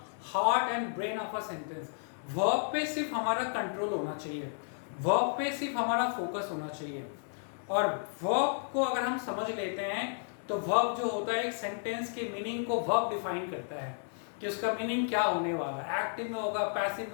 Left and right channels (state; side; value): silent; right; digital silence